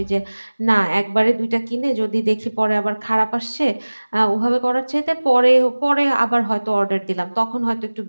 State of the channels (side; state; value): both; inverted; correlation -1.00